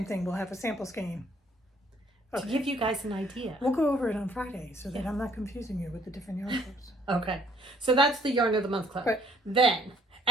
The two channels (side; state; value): both; normal; correlation 0.63